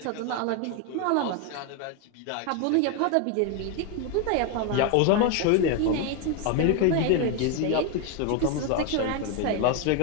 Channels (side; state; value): both; different; correlation 0.02